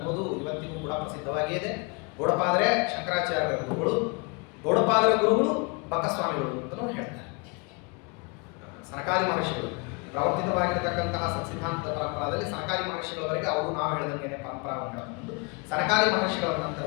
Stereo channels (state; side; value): quieter; right; 30.6 dB